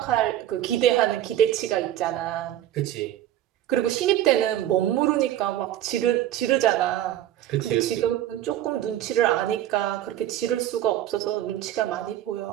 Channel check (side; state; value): left; quieter; 12.5 dB